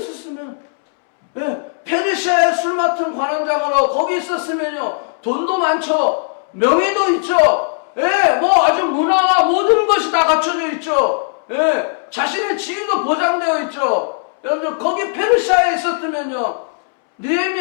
왜? 페르시아에 술 맡은 관원장으로 거기 있었으면요 돈도 많죠, 명예도 있죠, 예, 뭐 아주 문화와 모든 것이 다 갖춰져 있죠, 예, 자신의 지위도 보장되어 있죠. 여러분들 거기 페르시아에 있었으면요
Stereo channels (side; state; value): right; silent; 68 dB below the other